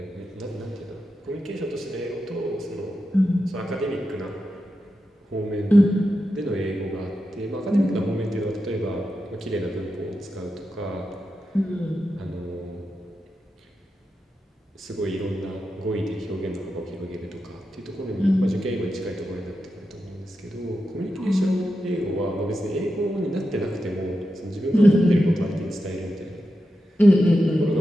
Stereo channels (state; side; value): normal; both; correlation 0.89